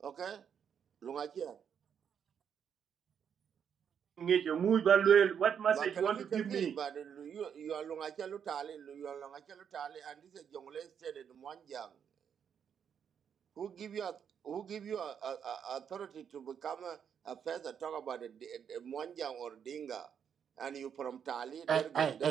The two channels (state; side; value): quieter; left; 7.8 dB